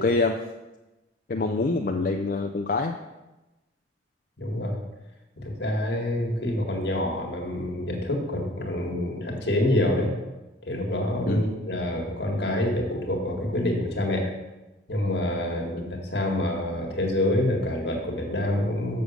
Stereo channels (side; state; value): both; normal; correlation 0.47